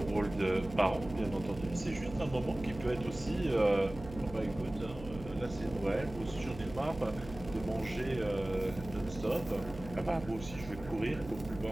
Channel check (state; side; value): noise; right; hum, 14 dB below the sound